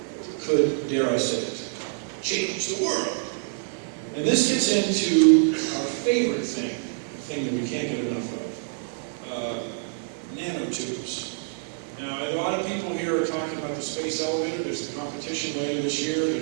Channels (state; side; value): silent; left; digital silence